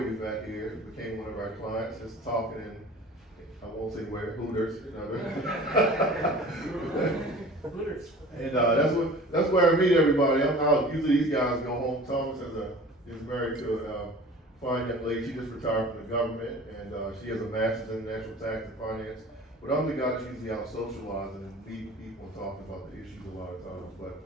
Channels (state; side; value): normal; both; correlation 0.42